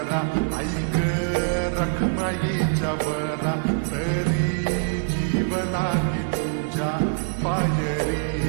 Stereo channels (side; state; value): left; silent; digital silence